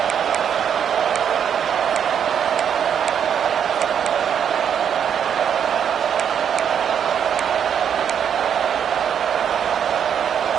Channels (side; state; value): left; quieter; 8.3 dB